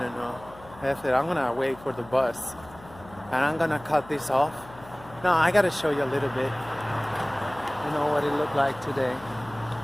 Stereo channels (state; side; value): noise; left; hum, 20 dB below the sound